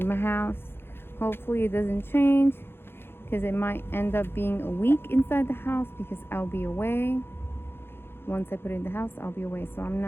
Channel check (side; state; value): right; late; 0.11 ms